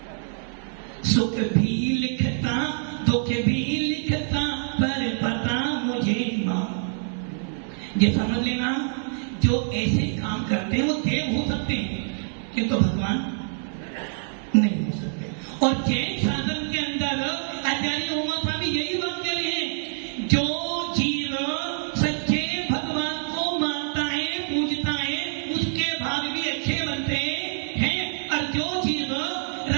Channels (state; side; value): silent; left; 59 dB below the other